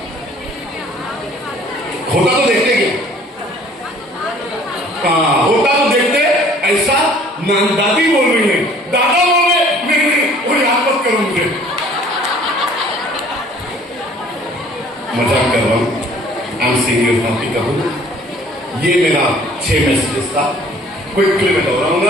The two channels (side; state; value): both; normal; correlation 0.54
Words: होता तो देखते क्या? हाँ, होता तो देखते. ऐसा दादी बोल रही है, दादा बोल रहे, नहीं वो याद मत करो मुझे, मजाक कर रहा हूं. आई एम सीरियस नॉट करूं. ये मेरा 6 मैसेजेस था, क्विकली मैं